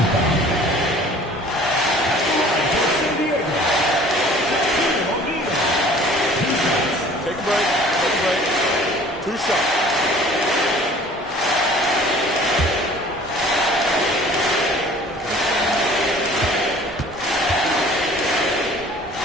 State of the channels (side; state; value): both; normal; correlation 0.49